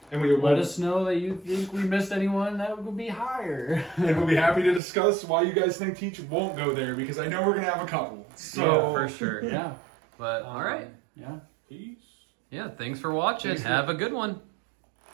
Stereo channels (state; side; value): drops out; left; at 4.8 s